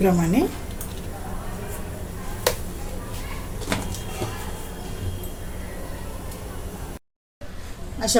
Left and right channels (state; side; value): identical; both; correlation 1.00